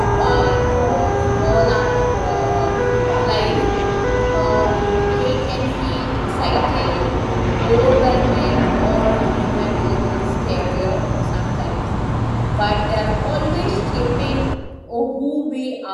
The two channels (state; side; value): identical; both; correlation 1.00